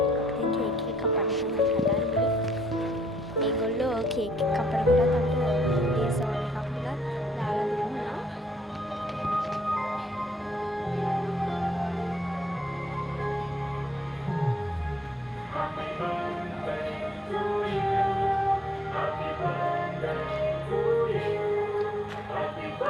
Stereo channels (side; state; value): both; normal; correlation 0.70